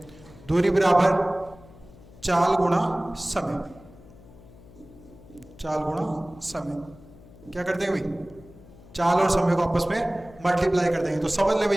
दूरी बराबर चाल गुणा समय, चाल गुणा समय। क्या करते हैं भाई, चाल और समय को आपस में मल्टीप्लाई कर देंगे। तो समझ ले भाई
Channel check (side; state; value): left; noise; hum, 22 dB below the sound